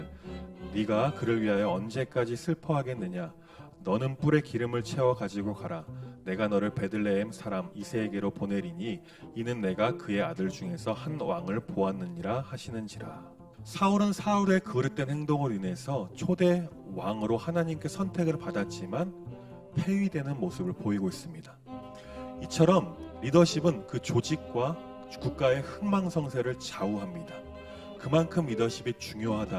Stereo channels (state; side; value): identical; both; correlation 1.00